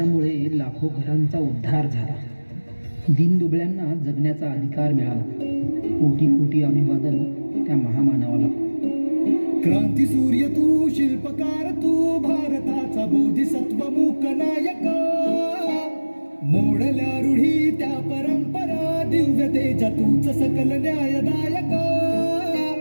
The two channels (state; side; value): inverted; both; correlation -1.00